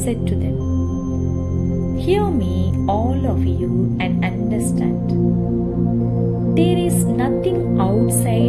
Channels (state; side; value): identical; both; correlation 1.00